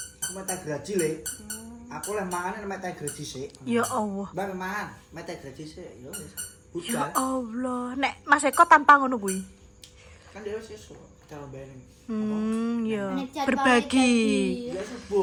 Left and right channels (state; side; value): identical; both; correlation 1.00